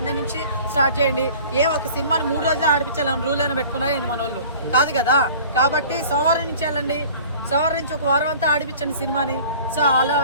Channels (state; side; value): inverted; both; correlation -0.46